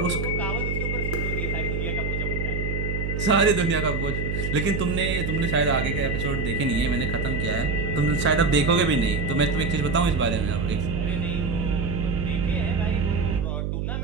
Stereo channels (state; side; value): noise; right; hum, 1 dB below the sound